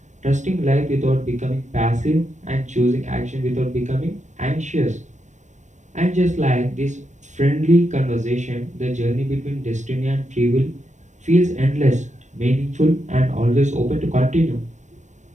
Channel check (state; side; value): late; left; 0.35 ms